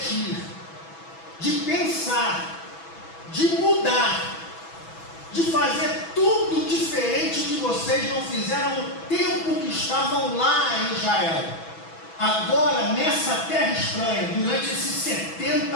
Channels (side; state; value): right; late; 6.1 ms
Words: de pensar, de mudar, de fazer tudo diferente que vocês não fizeram no tempo que estavam lá em Israel. Agora, nessa terra estranha, durante esses 70